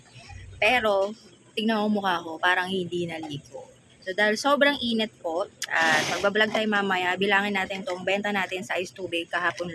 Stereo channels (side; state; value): both; identical; correlation 1.00